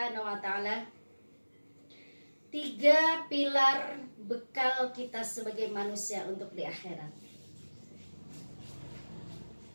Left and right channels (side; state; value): both; inverted; correlation -1.00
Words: wa taala, 3 pilar bekal kita sebagai manusia untuk di akhirat.